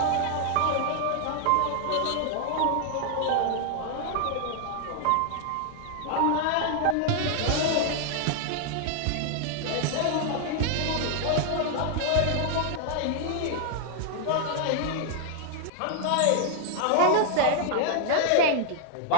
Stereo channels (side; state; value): both; different; correlation 0.00